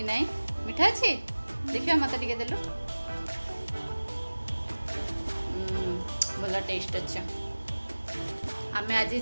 नहीं? मिठा अच्छी देखिए मत टे देलु। भल टेस्ट अच्छा। आमे आज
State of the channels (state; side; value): inverted; both; correlation -1.00